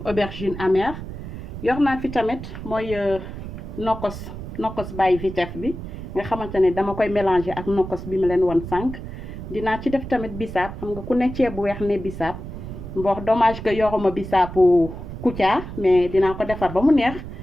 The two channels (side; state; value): right; noise; rumble, 9 dB below the sound